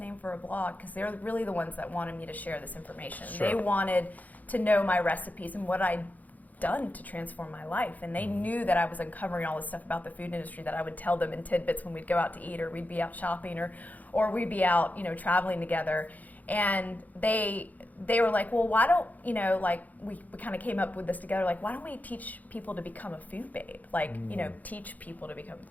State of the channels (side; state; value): right; late; 0.079 ms